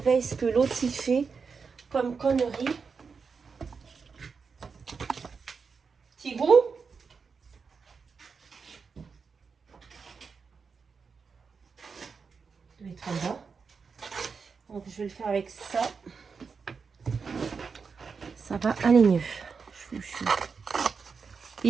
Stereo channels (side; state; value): left; quieter; 5.4 dB